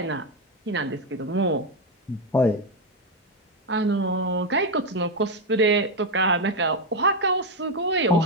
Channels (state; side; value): normal; both; correlation 0.06